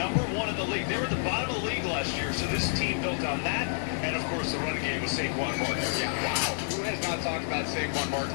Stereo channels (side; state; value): right; silent; digital silence